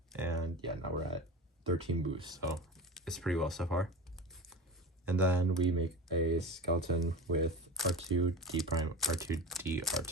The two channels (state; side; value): normal; both; correlation 0.29